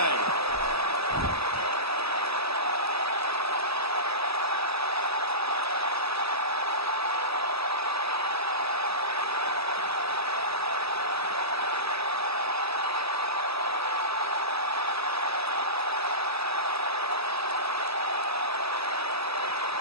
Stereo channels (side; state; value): left; late; 0.78 ms